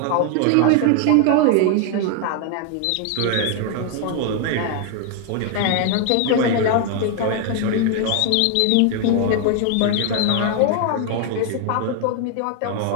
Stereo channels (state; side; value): different; both; correlation 0.00